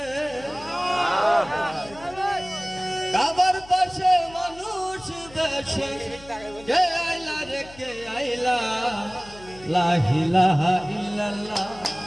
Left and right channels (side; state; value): left; noise; hum, 20 dB below the sound